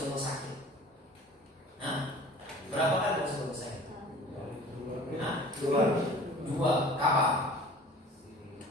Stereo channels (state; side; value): normal; both; correlation 0.44